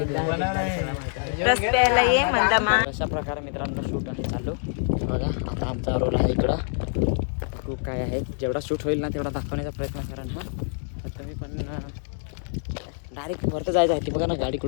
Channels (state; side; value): silent; right; 61 dB below the other